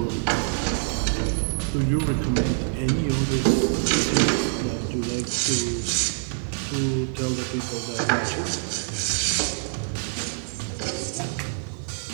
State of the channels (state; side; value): silent; left; digital silence